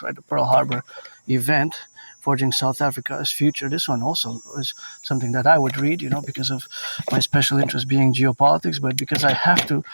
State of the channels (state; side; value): inverted; both; correlation -1.00